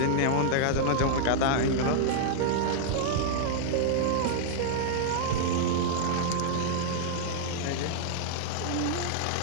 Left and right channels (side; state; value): both; different; correlation -0.01